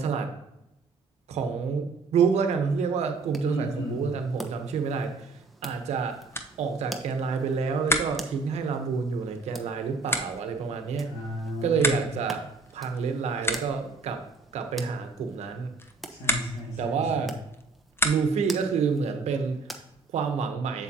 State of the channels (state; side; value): quieter; left; 4.1 dB